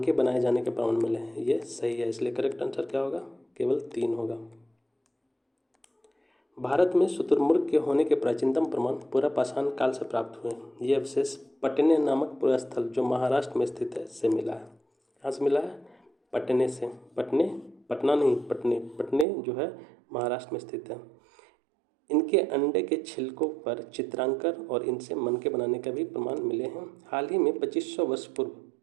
बनाए जाने के प्रमाण मिले हैं, ये सही है, इसलिए करेक्ट आंसर क्या होगा? केवल 3 होगा। भारत में शुतुरमुर्ग के होने के प्राचीनतम प्रमाण पुरापाषाण काल से प्राप्त हुए हैं। ये अवशेष पटने नामक पुरास्थल जो महाराष्ट्र में स्थित है से मिला है। कहाँ से मिला है? पटने से। पटने, पटना नहीं, पटने। पटने जो है महाराष्ट्र में स्थित है। इनके अंडे के छिलकों पर चित्रांकन और इनसे मनके बनाने का भी प्रमाण मिले हैं। हाल ही में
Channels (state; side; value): drops out; left; at 19.2 s